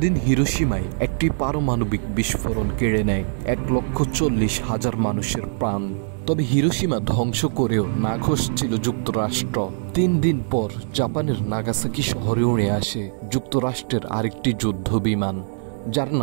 হিরোশিমায় একটি পারমাণবিক বিস্ফোরণ কেড়ে নেয় 1,40,000 মানুষের প্রাণ। তবে হিরোশিমা ধ্বংস করেও নাখোশ ছিল যুক্তরাষ্ট্র। 3 দিন পর জাপানের নাগাসাকি শহরে উড়ে আসে যুক্তরাষ্ট্রের আরেকটি যুদ্ধ বিমান, যার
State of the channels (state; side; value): silent; left; digital silence